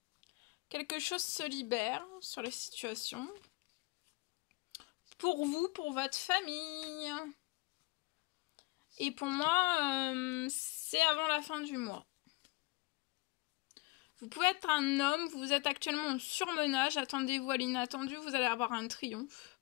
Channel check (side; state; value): right; quieter; 24.2 dB